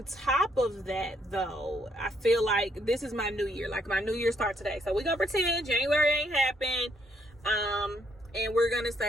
top of that though, I feel like this is my new year. Like my new year start today. So we're gonna pretend January ain't happened. And we're gonna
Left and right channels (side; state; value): both; normal; correlation 0.71